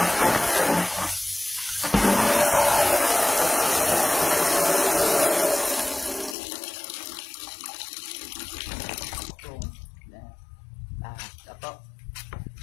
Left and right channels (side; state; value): right; drops out; at 6.4 s